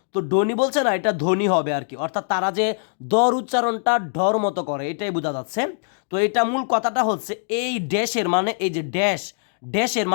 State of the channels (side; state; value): right; silent; digital silence